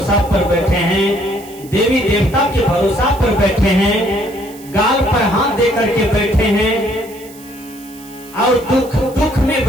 पर बैठे हैं, देवी देवता के भरोसा पर बैठे हैं, गाल पर हाथ दे करके बैठे हैं और दुख में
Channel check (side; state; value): right; noise; hiss, 21 dB below the sound